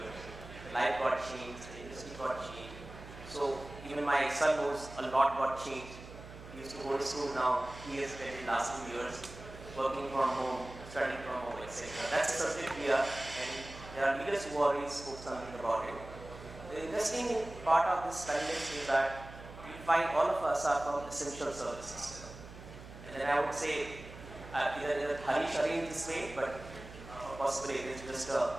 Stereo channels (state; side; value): noise; right; hum, 15 dB below the sound